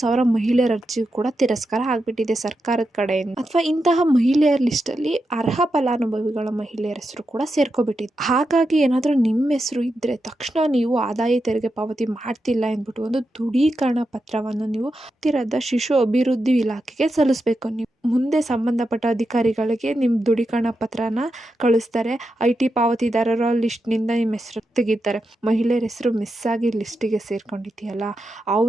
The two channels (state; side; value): normal; both; correlation 0.87